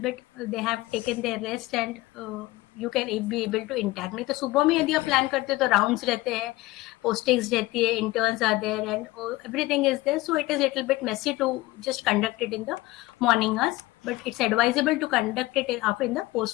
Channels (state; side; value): quieter; right; 19.3 dB